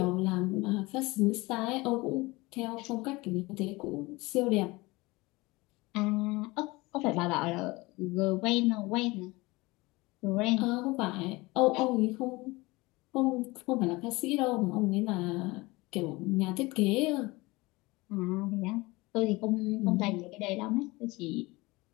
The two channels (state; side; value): quieter; right; 22.5 dB